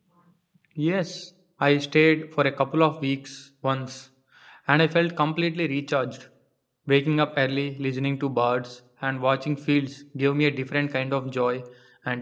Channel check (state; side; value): identical; both; correlation 1.00